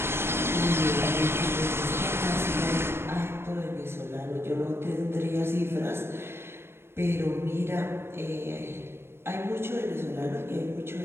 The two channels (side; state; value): left; late; 0.12 ms